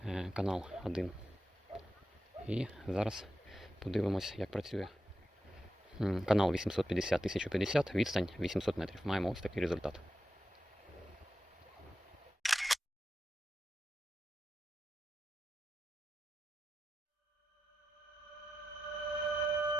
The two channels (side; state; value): both; normal; correlation 0.90